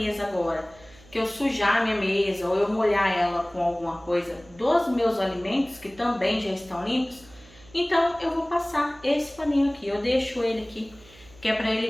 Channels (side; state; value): right; noise; hum, 25 dB below the sound